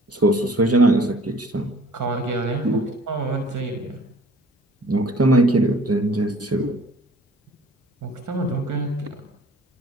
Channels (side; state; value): both; normal; correlation 0.52